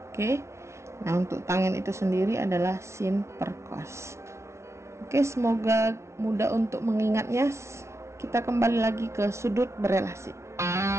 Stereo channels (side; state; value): left; late; 0.13 ms